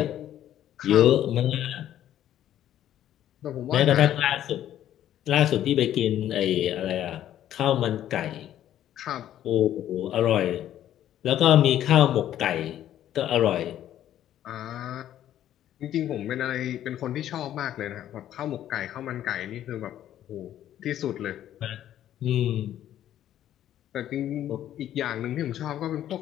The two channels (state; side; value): quieter; right; 11.7 dB